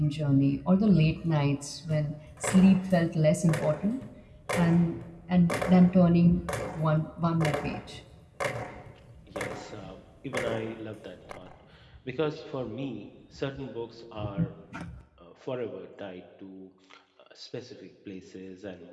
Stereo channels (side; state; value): both; identical; correlation 1.00